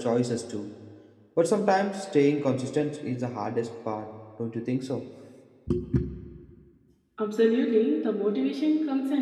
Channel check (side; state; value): both; identical; correlation 1.00